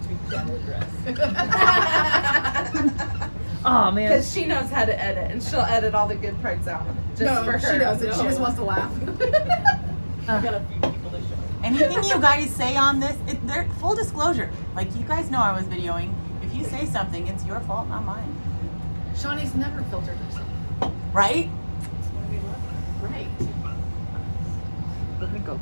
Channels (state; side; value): inverted; both; correlation -1.00